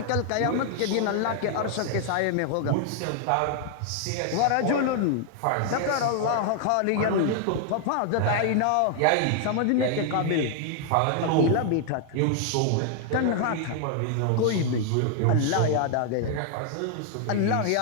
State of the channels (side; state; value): both; different; correlation 0.00